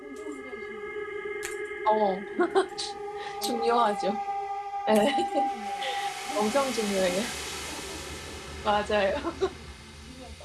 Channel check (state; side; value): identical; both; correlation 1.00